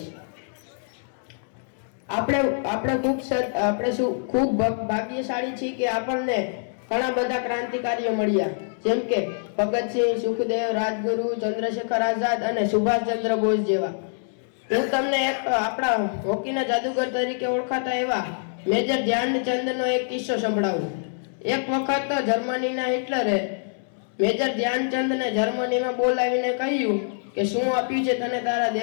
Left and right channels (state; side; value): silent; right; 62 dB below the other